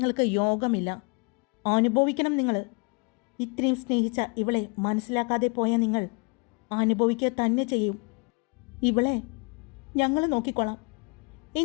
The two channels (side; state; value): right; quieter; 32.6 dB